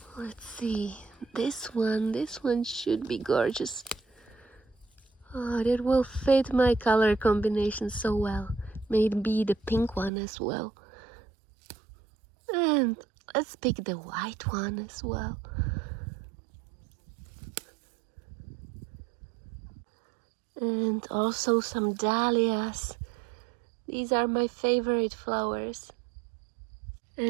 Let's see, this one should be gorgeous. Oh, that will fit my color combination so well. Maybe the pink one as well. And let's pick the white one as well. And also some dahlias. These are my favorite flowers.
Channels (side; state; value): left; drops out; at 10.1 s